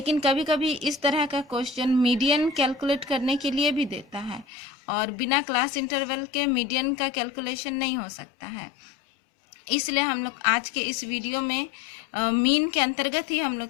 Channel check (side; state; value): right; drops out; at 4.5 s